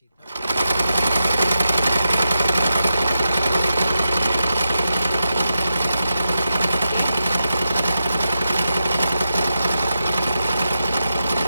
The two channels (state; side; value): inverted; both; correlation -0.88